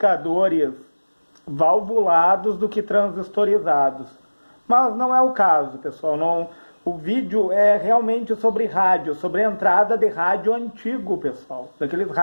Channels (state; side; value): inverted; both; correlation -1.00